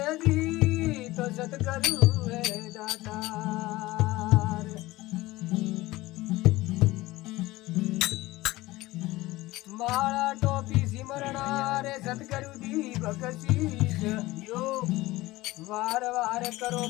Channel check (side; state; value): right; quieter; 18.9 dB